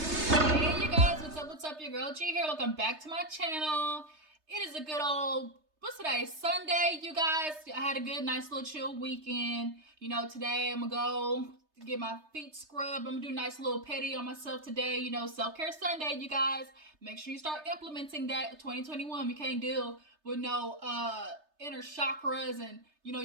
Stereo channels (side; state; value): left; late; 3.3 ms